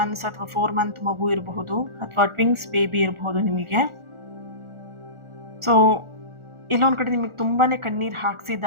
ಅಥವಾ 4 month ಮಗು ಇರಬಹುದು, ಅಥವಾ ಟ್ವಿನ್ಸ್ ಬೇಬಿ ಇರಬಹುದು ನಿಮಗೆ. ಸೊ ಇಲ್ಲೊಂದು ಕಡೆ ನಿಮಗೆ ತುಂಬಾ ಕಣ್ಣೀರು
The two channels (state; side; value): late; left; 1.4 ms